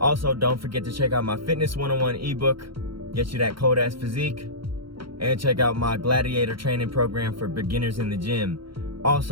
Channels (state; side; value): late; left; 0.74 ms